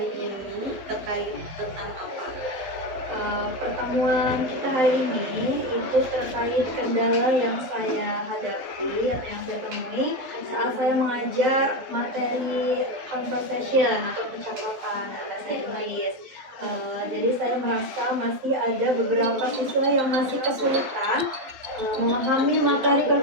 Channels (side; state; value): left; late; 12 ms